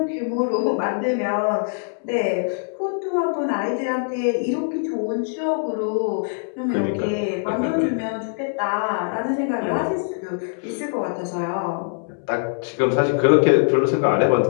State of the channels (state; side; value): silent; right; 64 dB below the other